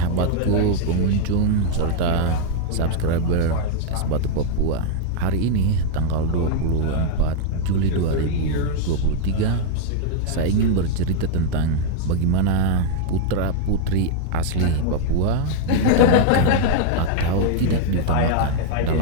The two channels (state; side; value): different; both; correlation -0.01